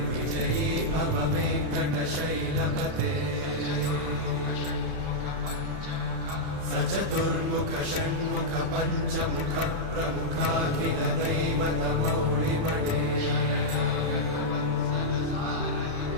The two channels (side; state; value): left; late; 31 ms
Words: विजयी भव वेङ्कटशैलपते सचतुर्मुख षण्मुख पञ्चमुख प्रमुखाखिल दैवतमौलिमणे